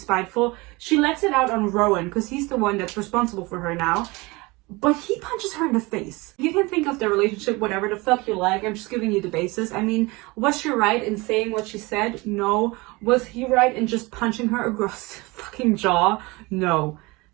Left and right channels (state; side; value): quieter; left; 24.1 dB